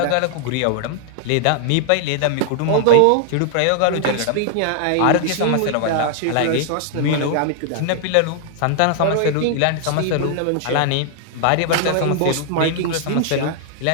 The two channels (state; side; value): different; both; correlation 0.00